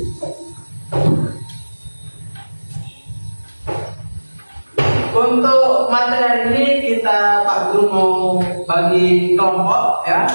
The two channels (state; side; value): inverted; both; correlation -1.00